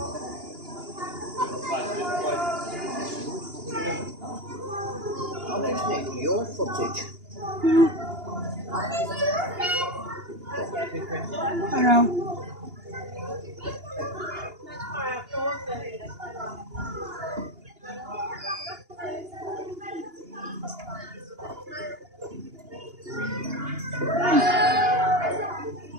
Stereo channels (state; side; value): late; left; 2.8 ms